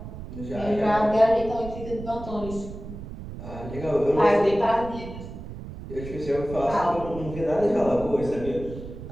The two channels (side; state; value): right; noise; rumble, 11 dB below the sound